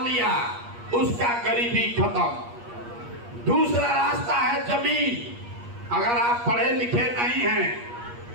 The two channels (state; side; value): late; left; 8.4 ms